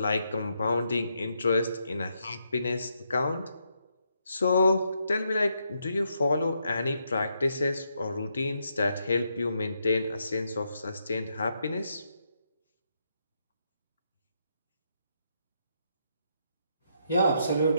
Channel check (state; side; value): inverted; both; correlation -0.79